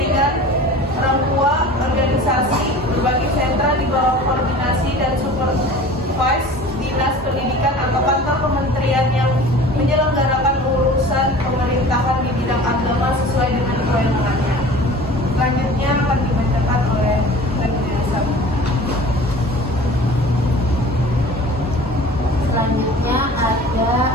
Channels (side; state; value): both; normal; correlation 0.42